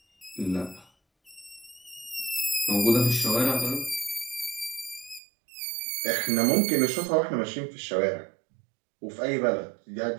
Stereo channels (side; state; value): left; drops out; at 5.2 s